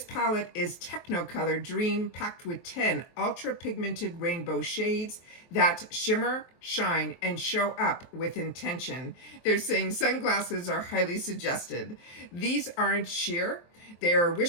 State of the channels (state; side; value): late; right; 23 ms